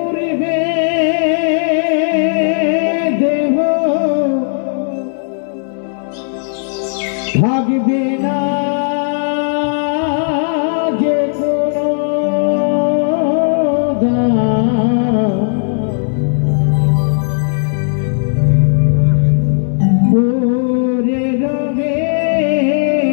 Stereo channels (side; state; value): right; silent; digital silence